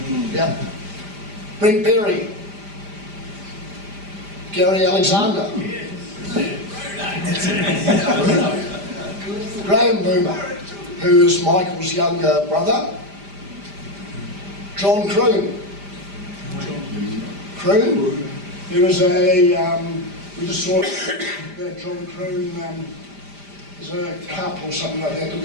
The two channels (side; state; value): left; late; 5.0 ms